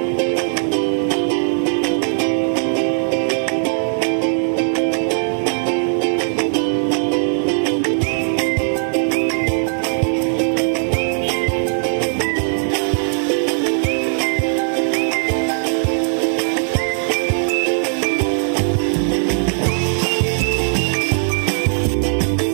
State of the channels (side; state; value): left; silent; digital silence